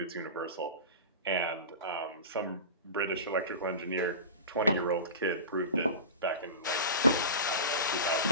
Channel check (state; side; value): inverted; both; correlation -0.30